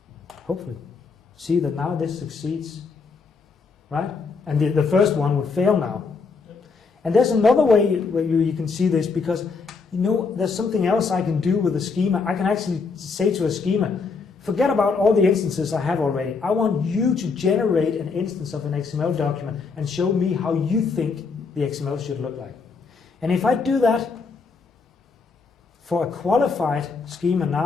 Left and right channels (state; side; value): quieter; right; 4.8 dB